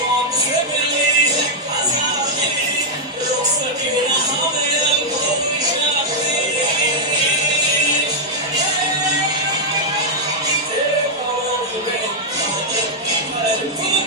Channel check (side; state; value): both; normal; correlation -0.03